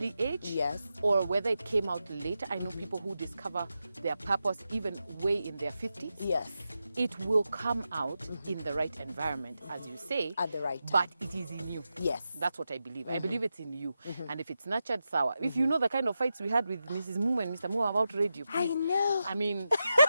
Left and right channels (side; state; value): both; inverted; correlation -0.89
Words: age, Yes. or whether it came out later. I know people who discover their purpose even way in their 50s. Yes. It will come out in the right environment, as you say. At the right time. But it is in you. Yes. That's what I believe. I believe it's in you. And if it's nurtured, sour. If you know the kind of fights we had with Mrs. Mumo and Mr. Mumo about radio, please. I know. I